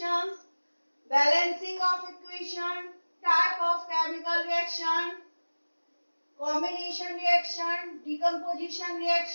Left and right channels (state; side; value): inverted; both; correlation -1.00